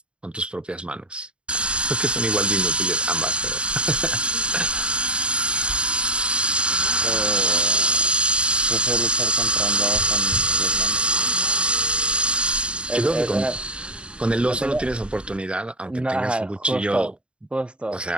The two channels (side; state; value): left; late; 0.055 ms